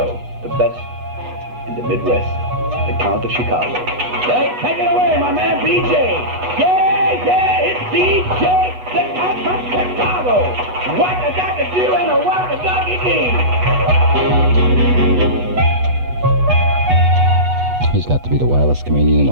the best in the Midwest, the Count of Chicago. Hey, take it away, my man BJ. Yeah, it's DJ, the Count from Chicago. What a ducky do and a what a ducky do. He's got to be the wildest comedian in the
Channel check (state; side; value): late; left; 8.2 ms